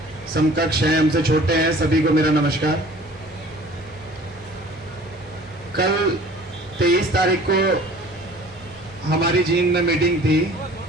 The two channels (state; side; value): normal; both; correlation 0.48